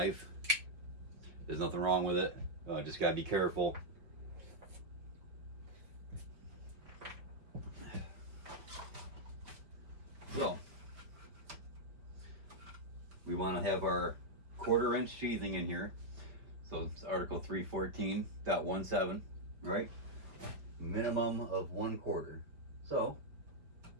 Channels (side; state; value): left; late; 5.0 ms